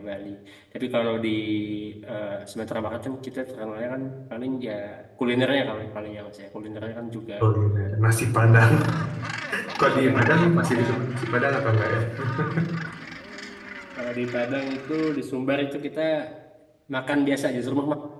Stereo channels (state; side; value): identical; both; correlation 1.00